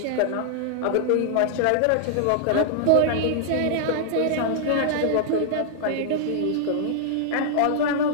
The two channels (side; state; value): both; different; correlation -0.01